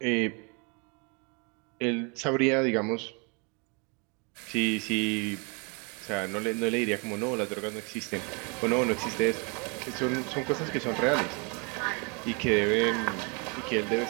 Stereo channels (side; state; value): left; quieter; 33.0 dB